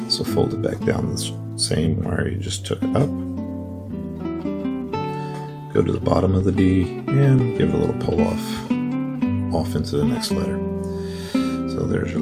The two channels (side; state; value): both; identical; correlation 1.00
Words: So fold it back down the same where you just took it up. Go to the bottom of the D and give it a little pull off into the next letter. So there's your